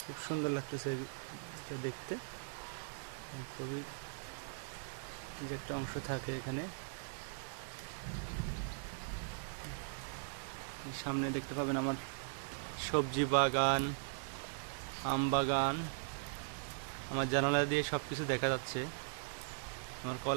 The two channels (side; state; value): left; silent; digital silence